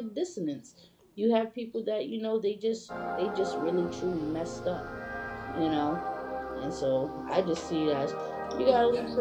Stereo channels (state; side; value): identical; both; correlation 1.00